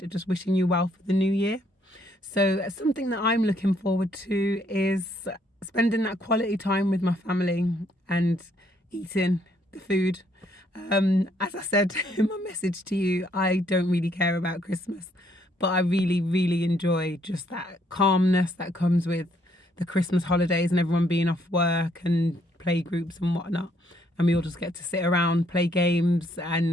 just wishing you well for the new year. So something that I'm looking forward to is spending that quality time with my family and eating the food. As I said in my message to you, I don't really care about Christmas, but I really, really enjoy just that calmness that comes with the Christmas holidays and everyone being off work and play groups and whatnot. And we all just get to sit around, play games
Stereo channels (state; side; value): normal; both; correlation 0.70